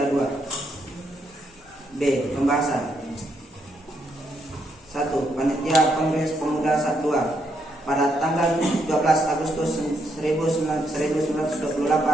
2. B. Pembahasan 1. Panitia Kongres Pemuda 2 pada tanggal 12 Agustus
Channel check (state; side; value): normal; both; correlation 0.77